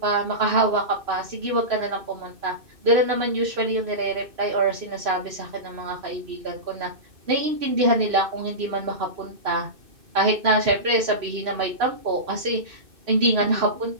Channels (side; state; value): left; late; 2.6 ms